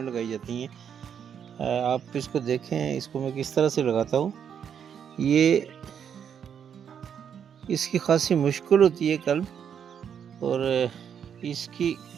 लगाई जाती हैं। आप इसको देखें, इसको मैं किस तरह से लगाता हूँ। ये इसकी खासी मुश्किल होती है कलम, और इसकी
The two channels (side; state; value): left; quieter; 8.1 dB